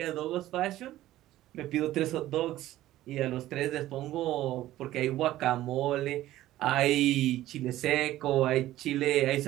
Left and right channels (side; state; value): left; quieter; 14.8 dB